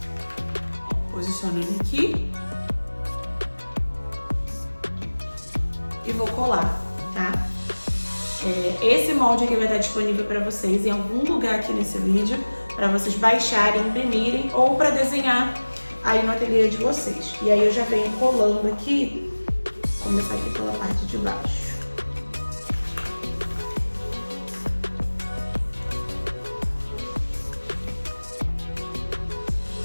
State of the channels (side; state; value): both; inverted; correlation -1.00